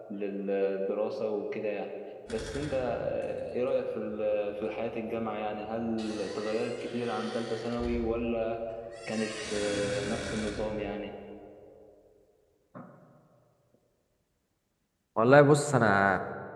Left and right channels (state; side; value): identical; both; correlation 1.00